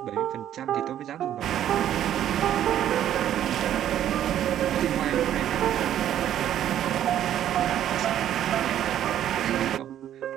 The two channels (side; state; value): left; quieter; 11.1 dB